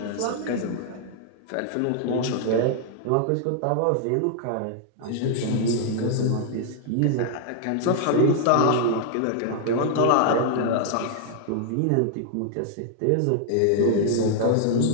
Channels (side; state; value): both; different; correlation 0.00